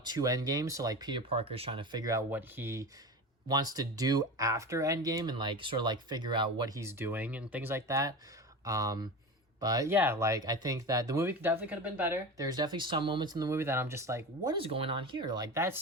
to Endgame. So like, Peter Parker's trying to figure out what he wants to do after Endgame and like sort of like figure out what he's doing and things like that. But yeah, like, I think that the movie definitely could have been better. There's definitely some moments in the movie that I'm just like, what is going on here? Like, that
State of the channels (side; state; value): both; normal; correlation 0.27